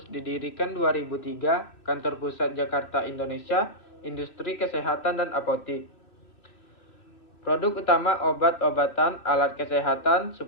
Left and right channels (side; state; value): right; late; 2.7 ms